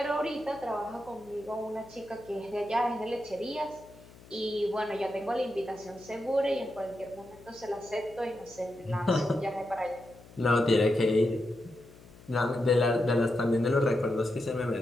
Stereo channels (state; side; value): noise; left; hum, 22 dB below the sound